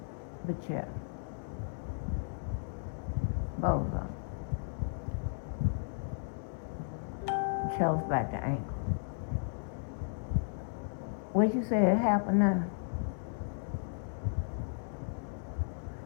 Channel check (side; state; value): right; silent; digital silence